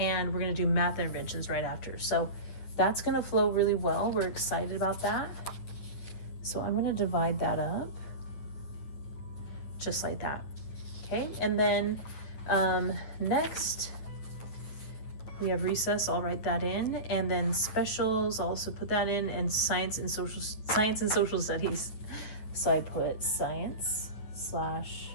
we're going to do math interventions right after. So that's going to flow really well. We're excited about that. So I'm going to divide that up just like that. Okay, and then next we have recess. I'll write that in, and then specials, I'll also put that in, and science and social studies. So I put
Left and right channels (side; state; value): right; late; 9.4 ms